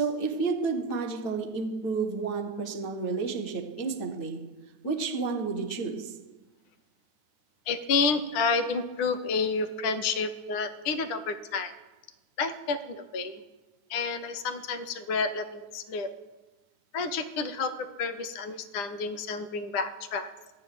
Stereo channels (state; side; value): late; right; 9.9 ms